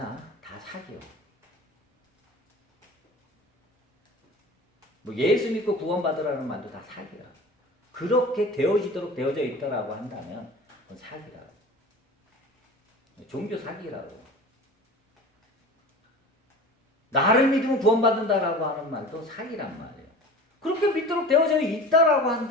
다 사기요. 뭐 예수 믿고 구원받으라는 말도 다 사기야. 그렇게 되어지도록 되어져 있다라고 한다면 그건 사기라. 종교 사기라고. 나를 믿으면 구원받는다라고 하는 말도 사기란 말이에요. 그렇게 믿도록 되어져 있다라고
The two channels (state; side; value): normal; both; correlation 0.37